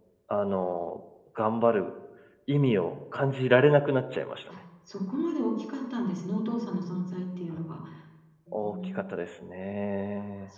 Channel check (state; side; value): identical; both; correlation 1.00